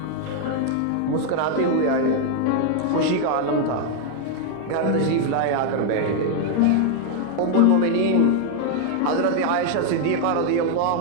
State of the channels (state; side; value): different; both; correlation 0.00